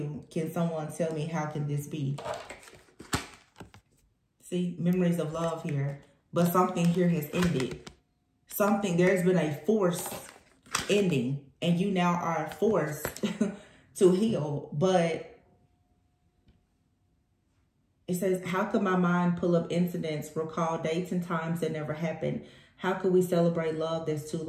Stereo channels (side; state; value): both; identical; correlation 1.00